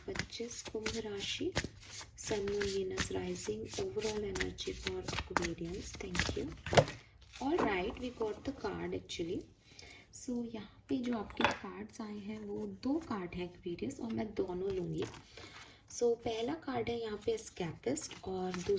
कुंभ राशि, sun moon Venus rising, overall energy for Aquarians. Thank you. All right, we got the card actually. So यहाँ पे जो आपके कार्ड्स आए हैं वो दो कार्ड हैं एक्वेरियस, और मैं दोनों लूँगी। सो पहला कार्ड है यहाँ पे एस्केपिस्ट और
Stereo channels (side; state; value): both; identical; correlation 1.00